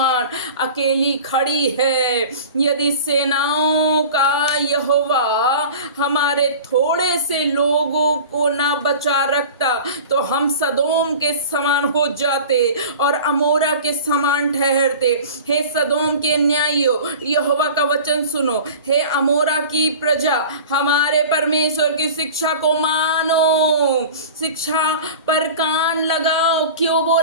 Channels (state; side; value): inverted; both; correlation -0.38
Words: अकेली खड़ी है। यदि सेनाओं का यहोवा हमारे थोड़े से लोगों को ना बचा रखता, तो हम सदोम के समान हो जाते और अमोरा के समान ठहरते। हे सदोम के न्यायियों, यहोवा का वचन सुनो। हे अमोरा की प्रजा, हमारे परमेश्वर की शिक्षा को मानो, शिक्षा पर कान लगाओ। क्यों